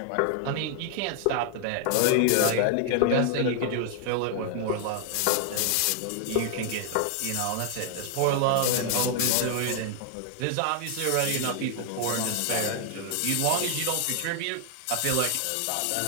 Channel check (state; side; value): different; both; correlation 0.00